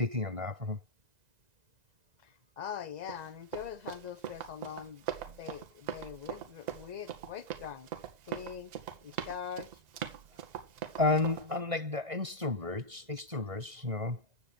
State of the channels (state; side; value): late; left; 2.0 ms